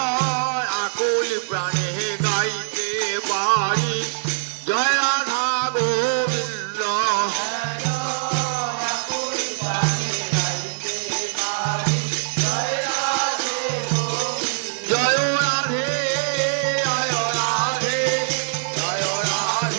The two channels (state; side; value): silent; left; 64 dB below the other